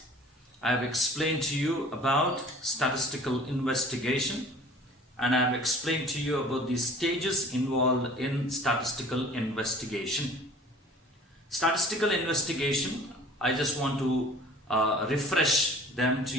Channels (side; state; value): both; normal; correlation 0.48